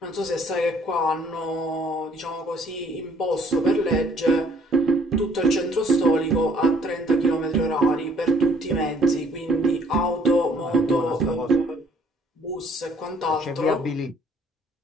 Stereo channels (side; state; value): both; normal; correlation 0.61